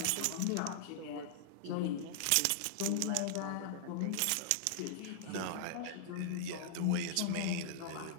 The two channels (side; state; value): both; different; correlation -0.01